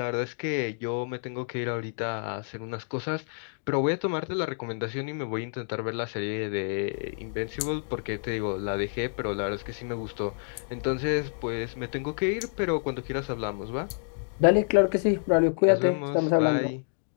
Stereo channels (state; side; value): silent; right; digital silence